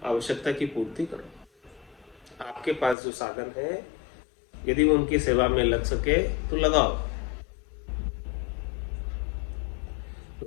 आवश्यकता की पूर्ति करो। आपके पास जो साधन है, यदि वो उनकी सेवा में लग सके तो लगाओ। तो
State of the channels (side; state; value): right; drops out; at 3.0 s